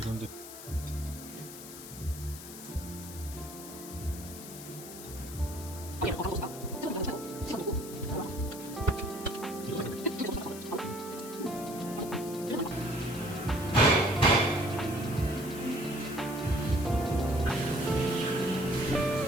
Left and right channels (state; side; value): noise; left; hiss, 13 dB below the sound